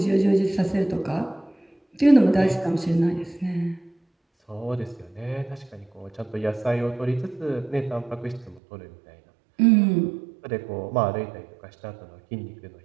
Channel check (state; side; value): drops out; left; at 8.6 s